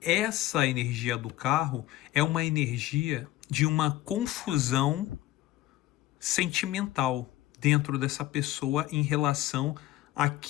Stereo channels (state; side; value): quieter; right; 15.5 dB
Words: essa energia do carro é uma energia de uma confusão sentimental dentro dessa pessoa em relação